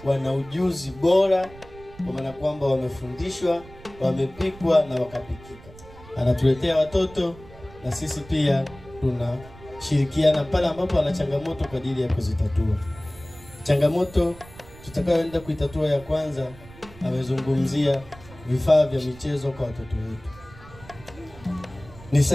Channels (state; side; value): noise; right; rumble, 20 dB below the sound